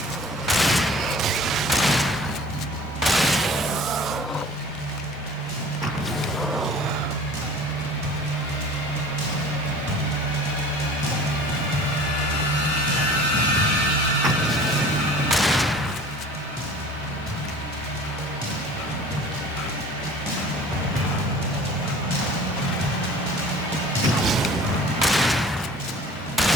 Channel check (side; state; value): both; normal; correlation 0.45